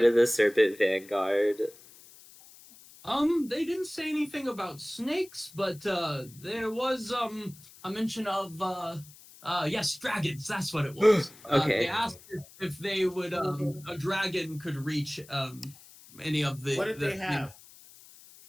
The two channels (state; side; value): noise; left; hiss, 22 dB below the sound